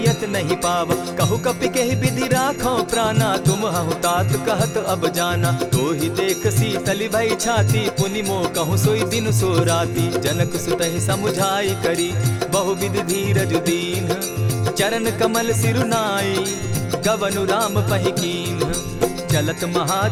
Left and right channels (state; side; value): identical; both; correlation 1.00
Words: नहीं पावा। कहु कपि केहि विधि राखो प्राणा, तुम हहु तात कहत अब जाना। तो ही देख शीतल भई छाती, पुनि मो कहूँ सोई दिन सो राती। जनक सुतहि समुझाई करी, बहुविधि धीरज दीन। चरण कमल सिरुनाई, गवनु राम पहि कीन। चलत